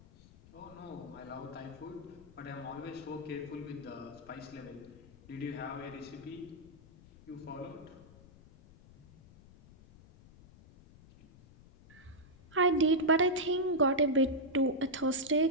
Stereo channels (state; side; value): noise; left; rumble, 23 dB below the sound